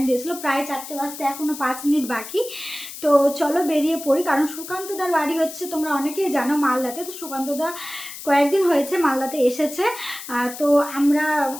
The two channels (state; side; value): noise; left; hiss, 12 dB below the sound